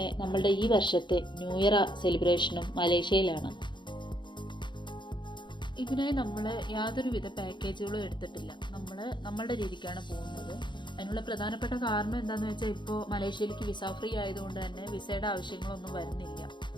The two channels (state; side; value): late; right; 0.23 ms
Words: നമ്മളുടെ ഈ വർഷത്തെ ന്യൂ ഇയർ സെലിബ്രേഷനും മലേഷ്യയിലാണ്. ഇതിനായി നമ്മൾ യാതൊരുവിധ പാക്കേജുകളും എടുത്തിട്ടില്ല. നമ്മളുടെ രീതിക്കാണ് പോകുന്നത്. അതിനുള്ള പ്രധാനപ്പെട്ട കാരണം എന്താണെന്ന് വെച്ചാൽ ഇപ്പോൾ മലേഷ്യയിലേക്ക് വിസ ഫ്രീ ആയതുകൊണ്ട് തന്നെ വിസയുടെ ആവശ്യങ്ങളൊന്നും വരുന്നില്ല.